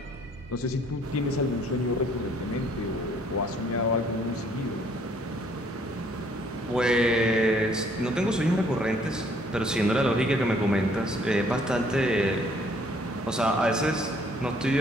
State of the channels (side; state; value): both; normal; correlation 0.62